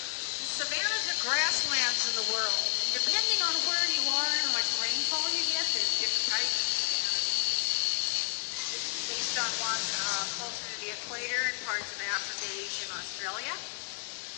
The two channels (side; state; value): right; silent; digital silence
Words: And savannas are grasslands in the world. And depending on where you are and how much rainfall you get, there's different types of savannas. This is based on one closer to the equator in parts of Africa, Asia, and Australia.